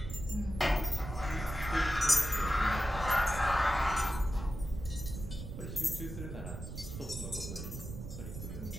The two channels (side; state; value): right; noise; rumble, 8 dB below the sound